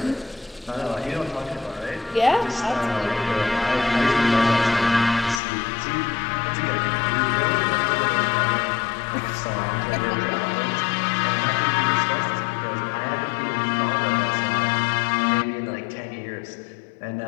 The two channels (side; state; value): right; drops out; at 5.4 s